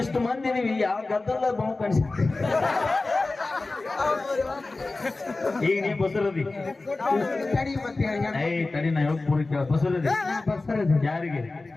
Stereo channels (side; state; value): right; quieter; 3.3 dB